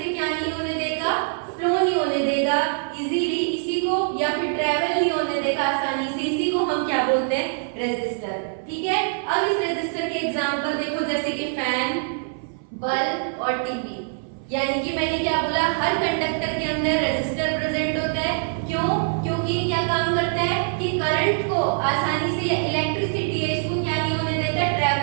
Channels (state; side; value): silent; left; 58 dB below the other